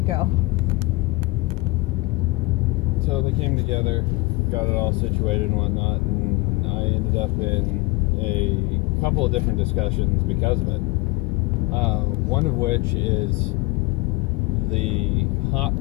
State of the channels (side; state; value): right; quieter; 23.2 dB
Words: go. So they came together, got it all situated and whatnot, and I ended up in a couple of different discussions because of it. One of which is the hot